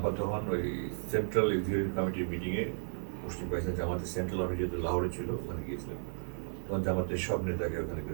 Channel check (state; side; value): silent; left; 55 dB below the other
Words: তখন ওই সেন্ট্রাল এক্সিকিউটিভ কমিটির মিটিংয়ে মুসলিম পাকিস্তান জামাতের সেন্ট্রাল অফিস যেহেতু লাহোরে ছিল, ওখানে গিয়েছিলেন। তখন জামাতের সব নেতাকে ওখানে